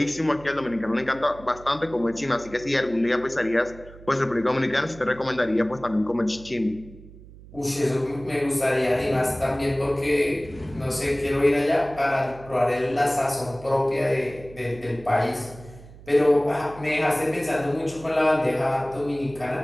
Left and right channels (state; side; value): noise; right; hum, 19 dB below the sound